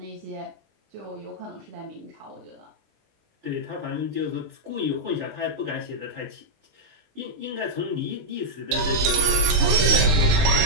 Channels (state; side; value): late; left; 20 ms